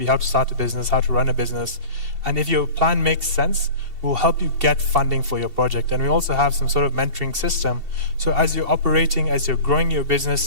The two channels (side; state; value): left; late; 2.7 ms